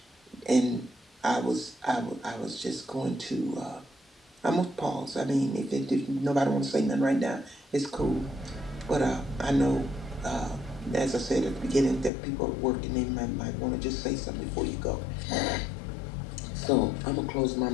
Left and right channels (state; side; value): drops out; right; at 12.1 s